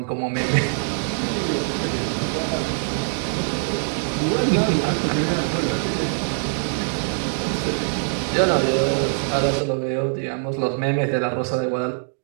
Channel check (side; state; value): left; silent; digital silence